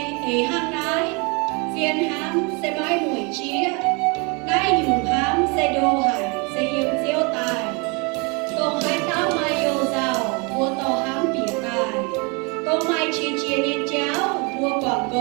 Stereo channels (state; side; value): quieter; left; 30.8 dB